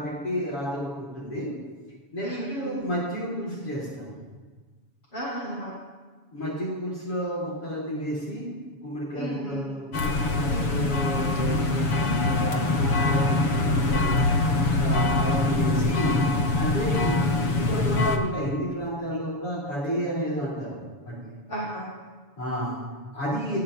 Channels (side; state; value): right; late; 7.1 ms